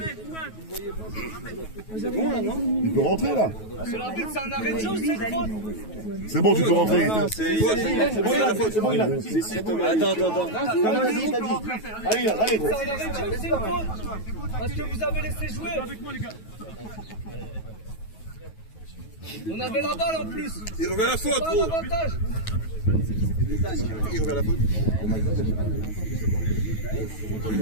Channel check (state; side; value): late; right; 9.3 ms